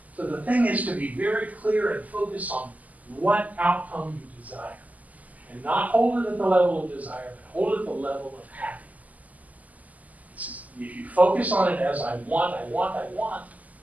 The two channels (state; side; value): late; left; 0.077 ms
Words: So the thing is to be very clear and focus on what outcome you desire. And not hold it at the level of desire, but hold it at the level of happiness. If you focus on it as I want,